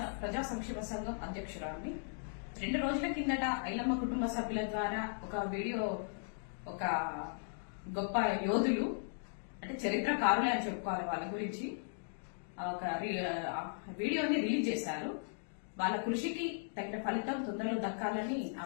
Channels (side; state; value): right; silent; digital silence